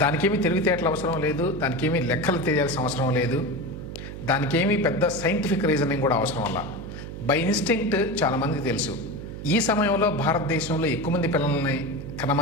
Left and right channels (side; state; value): right; noise; hum, 10 dB below the sound